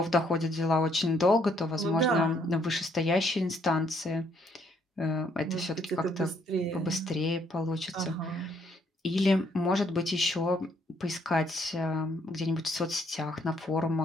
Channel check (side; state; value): both; normal; correlation 0.68